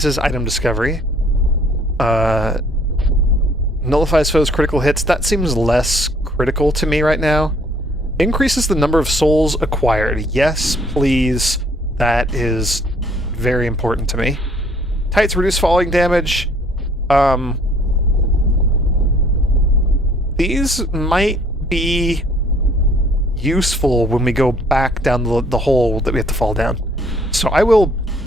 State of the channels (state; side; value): normal; both; correlation 0.60